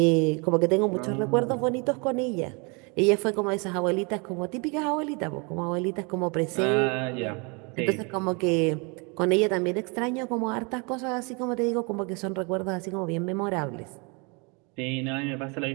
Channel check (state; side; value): quieter; left; 31.6 dB